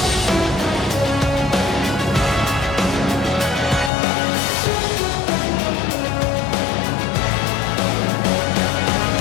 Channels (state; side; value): drops out; right; at 3.9 s